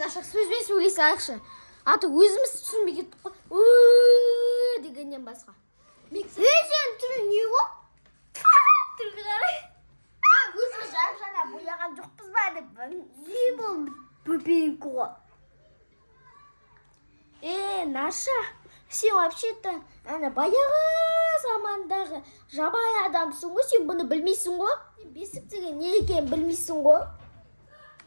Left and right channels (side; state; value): both; inverted; correlation -1.00